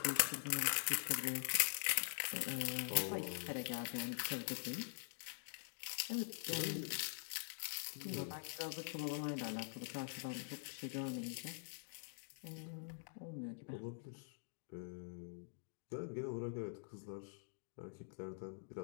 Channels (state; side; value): silent; right; digital silence